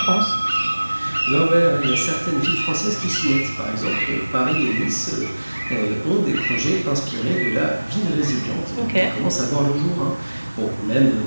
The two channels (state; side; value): inverted; both; correlation -1.00